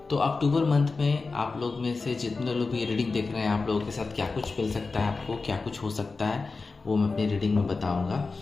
तो अक्टूबर मंथ में आप लोग में से जितने लोग भी रीडिंग देख रहे हैं, आप लोगों के साथ क्या कुछ मिल सकता है, आपको क्या कुछ हो सकता है, वो मैं अपनी रीडिंग में बताऊँगा।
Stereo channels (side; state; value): right; quieter; 4.0 dB